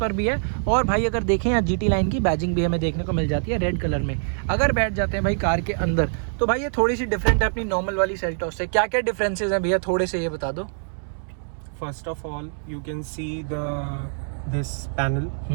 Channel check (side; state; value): left; silent; 62 dB below the other